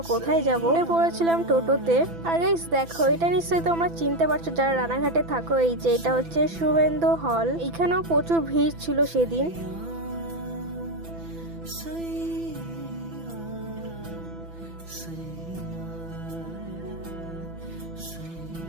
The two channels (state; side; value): late; left; 6.0 ms